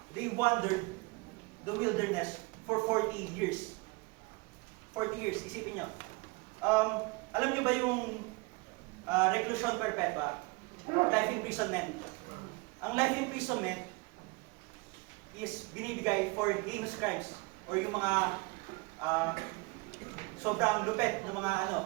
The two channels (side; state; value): left; quieter; 26.1 dB